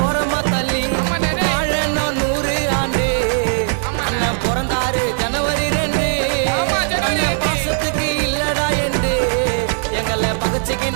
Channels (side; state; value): left; silent; digital silence